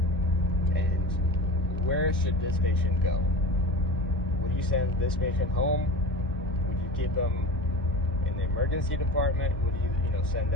And where should this patient go? Would you send this patient home? Would you keep them in the emergency department? Would you, send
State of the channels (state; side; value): normal; both; correlation 0.32